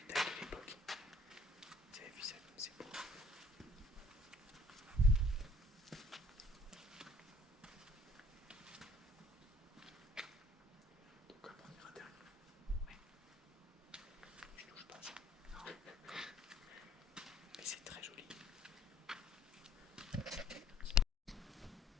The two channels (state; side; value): normal; both; correlation 0.58